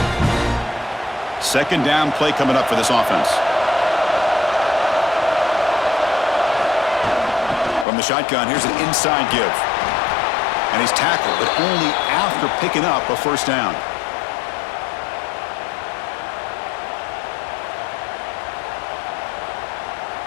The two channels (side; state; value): right; drops out; at 7.9 s